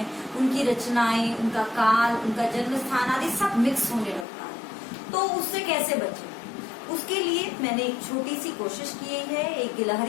उनकी रचनाएं, उनका काल, उनका जन्म स्थान आदि सब मिक्स होने लगता है। तो उससे कैसे बचे, उसके लिए मैंने एक छोटी सी कोशिश की है, एक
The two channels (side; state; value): right; drops out; at 4.2 s